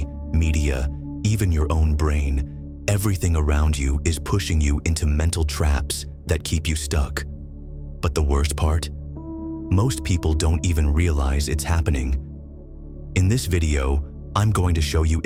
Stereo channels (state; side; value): identical; both; correlation 1.00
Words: media, even your own brain, everything around you is pushing you into mental traps that keep you stuck. But the worst part? Most people don't even realize it's happening. In this video, I'm going to show you